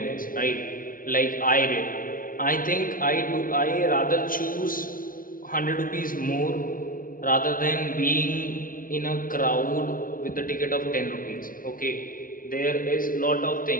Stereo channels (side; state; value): right; late; 0.40 ms